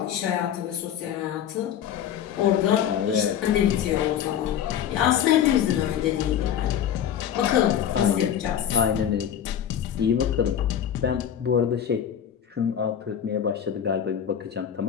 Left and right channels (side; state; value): right; quieter; 9.4 dB